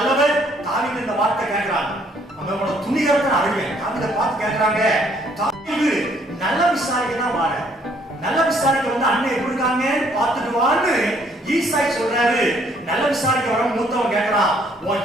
தாவீது இந்த வார்த்தை கேட்கிறாங்க, அவங்களோட துணிகரத்தை அறிவேன். தாவீதை பார்த்து கேட்கிறாங்க, தாவீது நல்ல விசாரிக்க தான் வார, நல்ல விசாரிக்க வந்து அண்ணன் எப்படி இருக்காங்க பார்த்துட்டு வான்னு ஈசாய் சொல்றாரு. நல்ல விசாரிக்க வர மூத்தவன் கேட்கிறான்,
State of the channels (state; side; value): normal; both; correlation 0.65